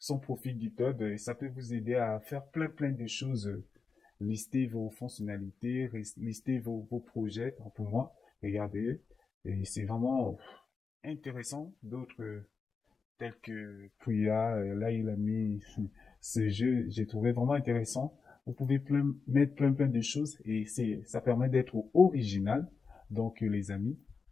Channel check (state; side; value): quieter; right; 5.0 dB